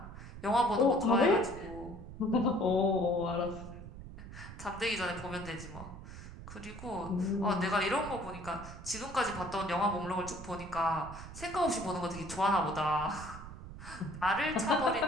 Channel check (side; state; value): right; noise; rumble, 12 dB below the sound